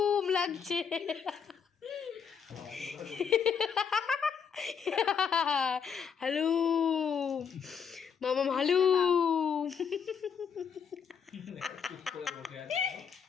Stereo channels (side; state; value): right; quieter; 6.9 dB